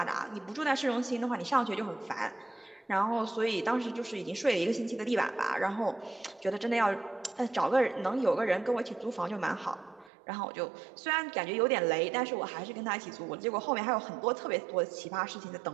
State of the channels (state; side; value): drops out; left; at 10.1 s